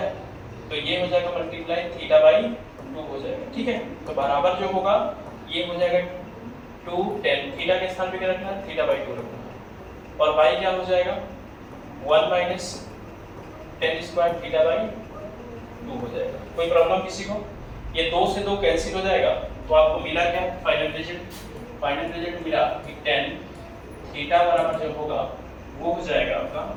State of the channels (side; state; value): both; identical; correlation 1.00